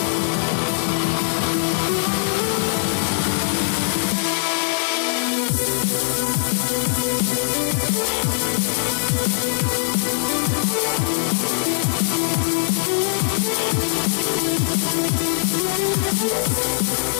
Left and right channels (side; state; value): right; silent; 65 dB below the other